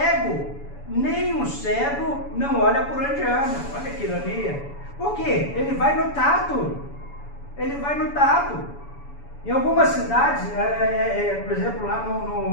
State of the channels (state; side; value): late; right; 7.0 ms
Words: Nem o cego não olha por onde anda. Olha que ironia. Por quê? Ele vai no tato. Ele vai no tato. Em algumas cidades, por exemplo, lá